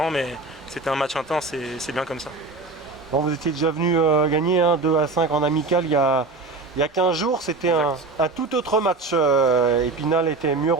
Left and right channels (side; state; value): left; quieter; 3.6 dB